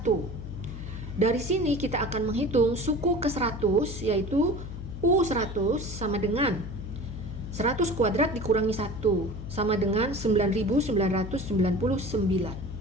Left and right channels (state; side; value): noise; left; hum, 9 dB below the sound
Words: Dari sini kita akan menghitung suku ke 100 yaitu U100 sama dengan 100 kuadrat dikurangi 1 sama dengan 9.999.